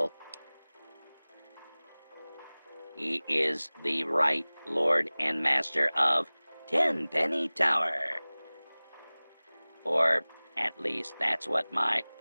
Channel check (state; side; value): inverted; both; correlation -1.00